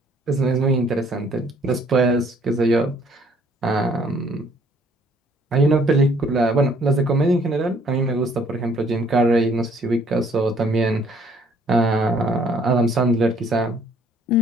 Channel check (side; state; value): both; normal; correlation 0.61